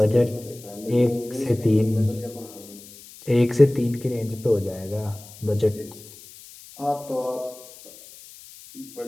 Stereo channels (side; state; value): left; noise; hiss, 19 dB below the sound